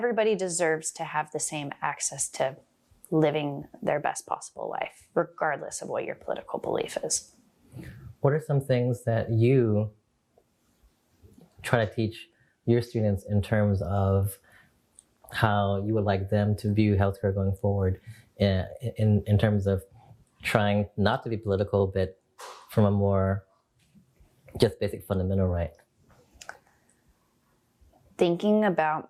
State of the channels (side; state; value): both; identical; correlation 1.00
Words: deserves to have the same access to living their best possible life, regardless of what your political belief is. What are some things that you try to teach your students in terms of how you would like them to view healthcare going forward, in terms of trying not to be political, but from a more just basic fundamental right? Thinking